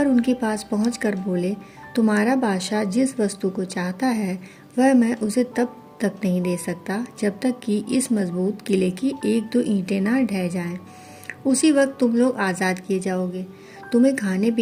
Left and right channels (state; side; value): identical; both; correlation 1.00